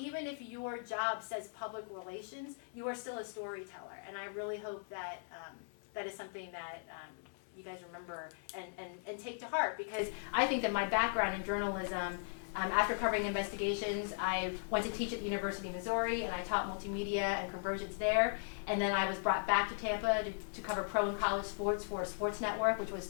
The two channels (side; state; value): right; silent; digital silence